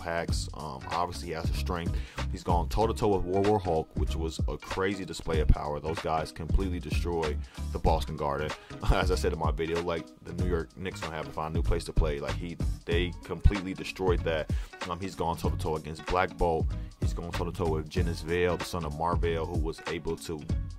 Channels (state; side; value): identical; both; correlation 1.00